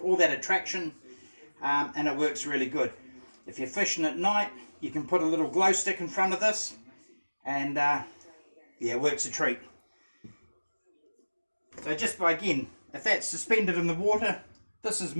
all that attraction, and it works really good. If you're fishing at night, you can put a little glow stick in front of this, and yeah, it works a treat. So just by, again, if that's suspended in the water, this is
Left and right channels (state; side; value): inverted; both; correlation -1.00